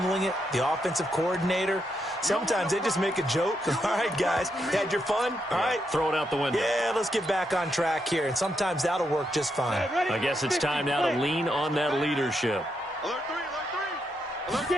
it? The offensive coordinator? Sometimes they just make a joke. All right, guys, had your fun? All right. Throw it out the window. Yeah, let's get back on track here. And sometimes that'll work just fine. I guess it's time now to lean on that leadership. Alert 3, alert 3. Alert,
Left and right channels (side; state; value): both; normal; correlation 0.81